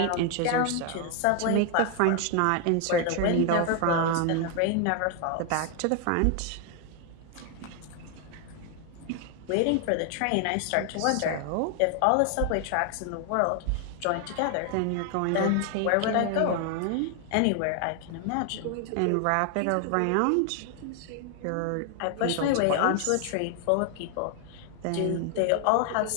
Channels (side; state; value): both; different; correlation 0.00